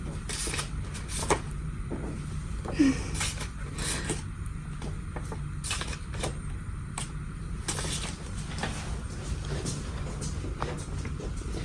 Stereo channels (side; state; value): both; identical; correlation 1.00